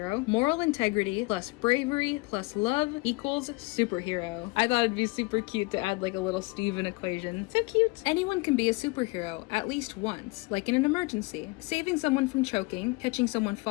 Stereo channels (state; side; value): quieter; right; 25.4 dB